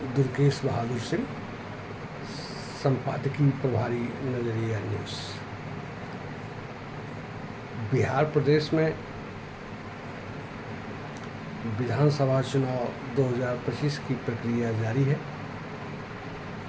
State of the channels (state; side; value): identical; both; correlation 1.00